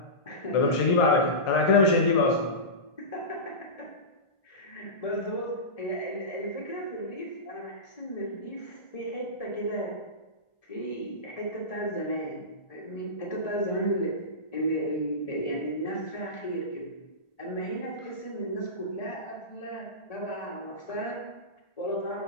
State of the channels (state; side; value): late; right; 1.4 ms